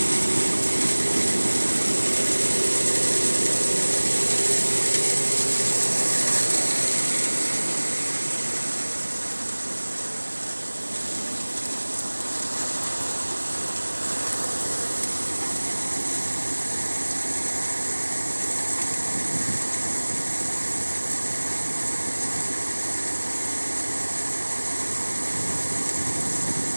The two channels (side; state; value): both; inverted; correlation -1.00